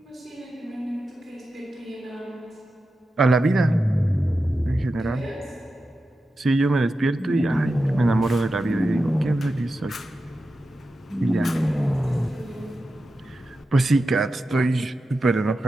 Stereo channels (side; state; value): both; normal; correlation 0.91